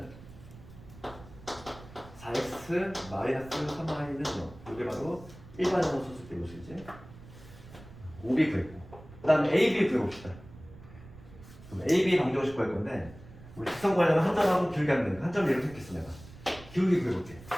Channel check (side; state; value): right; noise; rumble, 18 dB below the sound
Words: 4x 마이너스 3y는 0. 이게 바로 일반형으로 썼을 때 모습이지. OB 구했고 그 다음에 AB 구해봅시다. 그럼 AB 방정식 구할 건데 우리 직선 구하려면 한 점하고 기울기 하면 되니까 한 점 예로 택했어 내가. 기울기 구해볼게.